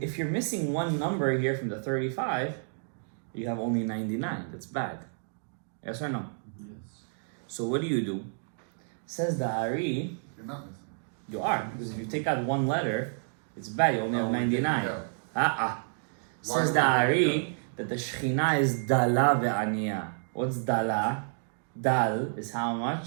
you're missing one number here from the 35, you have only 99. That's bad. Yes or no? Yes. So what do? Says the Ari, You're not missing. you are, because if you take out one letter, it's bad. You only have 99. Says the Ari that the Shekhinah is Dala ve'aniya. What's Dala? Dal is how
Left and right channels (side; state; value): left; silent; digital silence